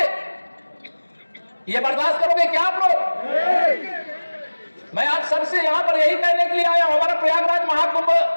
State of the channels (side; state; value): both; inverted; correlation -1.00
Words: ये बर्दाश्त करोगे क्या आप लोग? मैं आप सबसे यहां पर यही कहने के लिए आया हूं, हमारा प्रयागराज महाकुंभ